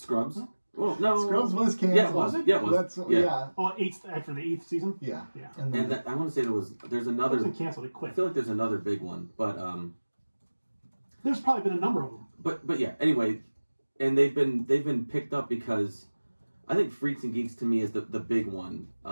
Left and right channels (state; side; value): inverted; both; correlation -1.00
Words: Well, no. Scrubs was canceled. Yeah, it was. Yeah, it was. Yeah. Oh, after the 8th season? Yeah. Yeah. And then I want to say there's another. It wasn't canceled, it quit. I feel like there's another big one, but there's probably been a number of them. But yeah, anyway, and they've been picked up because I think Freaks and Geeks to me is the big one.